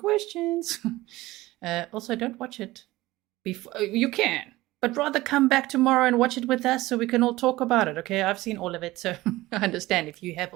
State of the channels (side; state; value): left; quieter; 18.3 dB